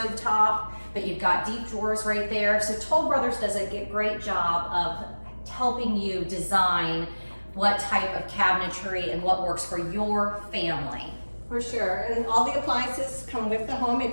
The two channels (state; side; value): inverted; both; correlation -1.00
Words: top, but you've got deep drawers right there. So Toll Brothers does a great job of helping you design what type of cabinetry and what works for your family. For sure, and all the appliances come with the home